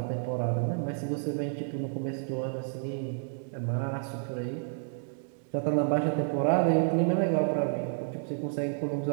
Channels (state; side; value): silent; left; digital silence